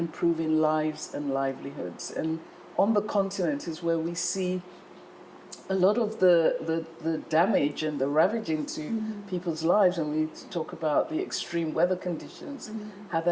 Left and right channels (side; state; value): both; identical; correlation 1.00